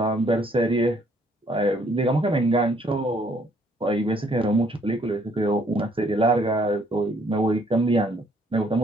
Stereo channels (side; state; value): both; normal; correlation 0.65